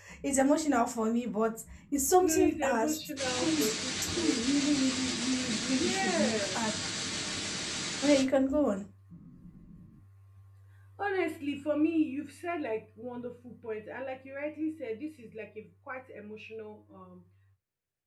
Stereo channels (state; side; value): identical; both; correlation 1.00